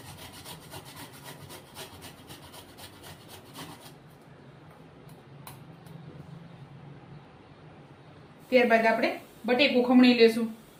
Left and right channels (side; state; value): both; identical; correlation 1.00